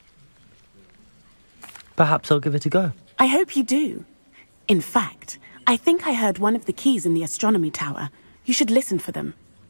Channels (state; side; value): inverted; both; correlation -1.00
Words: Perhaps I'll give it a go. I hope you do. In fact, I think I heard one of the keys in the astronomy tower. You should listen for them.